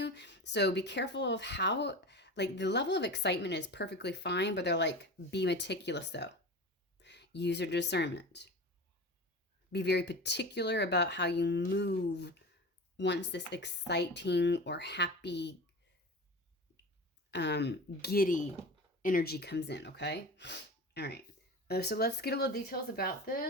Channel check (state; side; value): normal; both; correlation 0.31